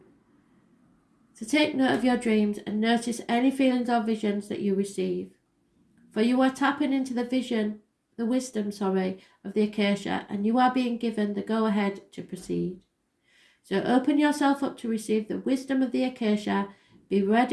So take note of your dreams and notice any feelings or visions that you receive. For you are tapping into the wisdom of the acacia, and you are being given the go-ahead to proceed. So open yourself up to receive the wisdom of the acacia. Be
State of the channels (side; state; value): both; identical; correlation 1.00